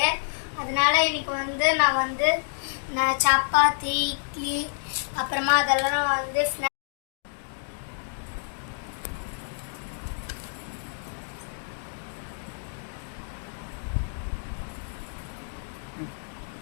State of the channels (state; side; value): silent; right; digital silence